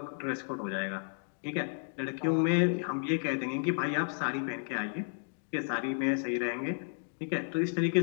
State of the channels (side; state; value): right; silent; digital silence